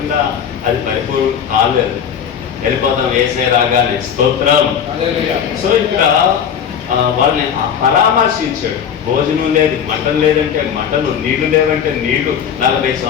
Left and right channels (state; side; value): quieter; right; 8.0 dB